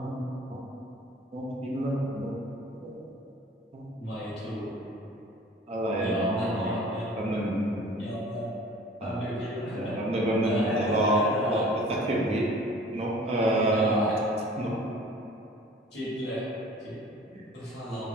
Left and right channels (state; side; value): normal; both; correlation 0.47